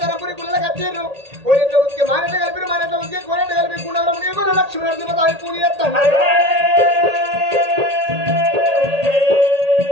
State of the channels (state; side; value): late; left; 1.8 ms